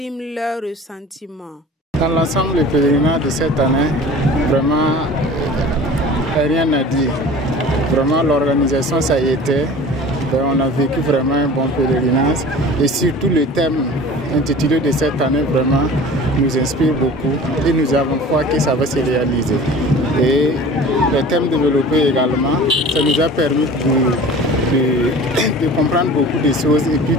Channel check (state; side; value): normal; both; correlation 0.42